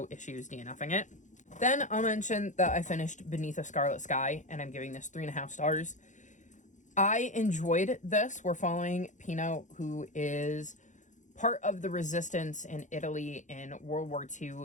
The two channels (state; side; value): late; right; 0.36 ms